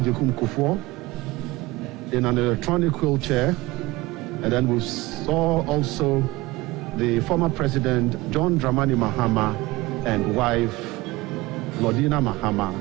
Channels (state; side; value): quieter; left; 20.0 dB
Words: Kufuor in an electronic wheelchair. And then we saw also the former President John Dramani Mahama and wife Lordina Mahama